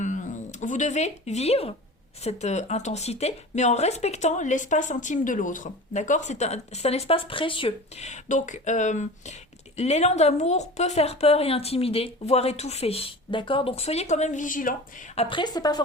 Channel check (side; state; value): both; normal; correlation 0.36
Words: devez vivre cette intensité, mais en respectant l'espace intime de l'autre. D'accord ? C'est un espace précieux. Donc, l'élan d'amour peut faire peur et intimider, voire étouffer, d'accord? Donc soyez quand même vigilants. Après, c'est pas